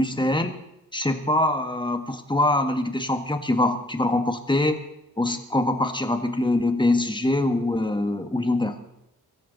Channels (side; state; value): both; normal; correlation 0.65